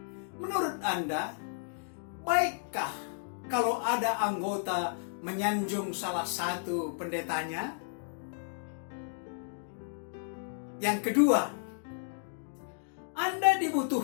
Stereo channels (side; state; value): right; silent; digital silence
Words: Menurut Anda, baikkah kalau ada anggota menyanjung salah satu pendetanya? Yang kedua, Anda